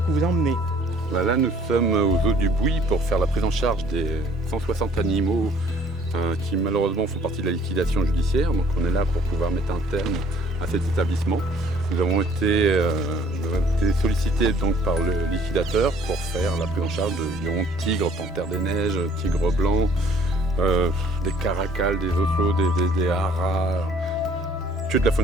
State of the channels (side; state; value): both; normal; correlation 0.58